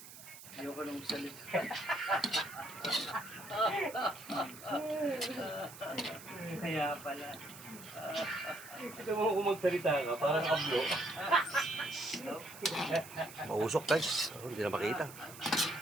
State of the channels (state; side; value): noise; right; hiss, 16 dB below the sound